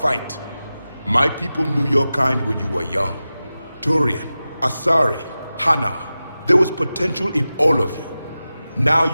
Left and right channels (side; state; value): both; inverted; correlation -0.95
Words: My people knew your kind when you were young. Turian, Asari, Hana. There was potential in all of you. Now